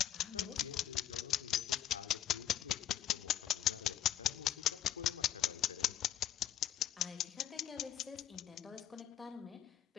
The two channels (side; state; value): right; quieter; 11.0 dB